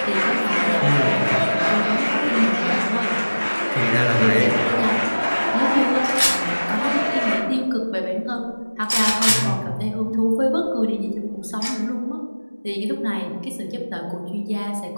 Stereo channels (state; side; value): inverted; both; correlation -1.00